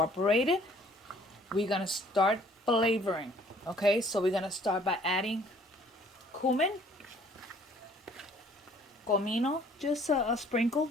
We're going to start flavoring. Okay, so we're going to start by adding cumin. Comino, just a sprinkle.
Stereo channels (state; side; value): normal; both; correlation 0.58